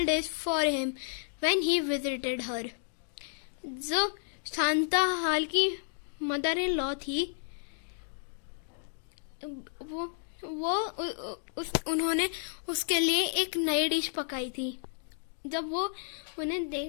dish for him when he visited her. जो शांताहाल की mother in law थी, उन्होंने उसके लिए एक नई डिश पकाई थी जब वो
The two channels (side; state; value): right; silent; digital silence